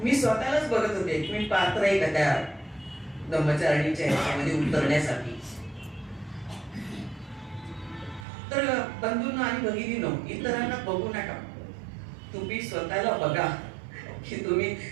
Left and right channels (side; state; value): left; drops out; at 8.2 s